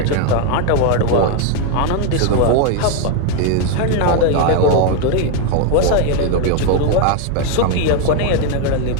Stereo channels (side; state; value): both; different; correlation 0.01